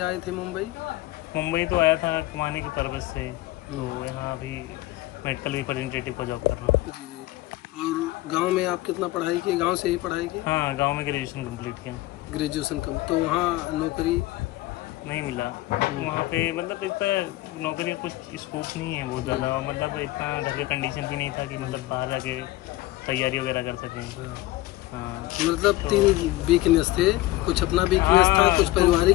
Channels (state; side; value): quieter; right; 17.6 dB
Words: आए थे मुंबई? मुंबई तो आया था कमाने के पर्पज से, तो हम्म। यहाँ अभी मेडिकल रिप्रेजेंटेटिव का जॉब कर रहा हूँ। जी जी। और गांव में आप कितना पढ़ाई की? गांव से ही पढ़ाई की? हाँ, गांव में ग्रेजुएशन कंप्लीट किया। ग्रेजुएशन कम तो वहाँ नौकरी नहीं मिला वहाँ पे, मतलब इतना नौकरी का कुछ स्कोप नहीं है बहुत ज़्यादा, और मतलब इतना घर के कंडीशन भी नहीं था कि मतलब बाहर जाके तैयारी वगैरह कर सकें। हाँ, मतलब तीन वीकनेस थे, कुछ अपना वीकनेस था, हाँ, कुछ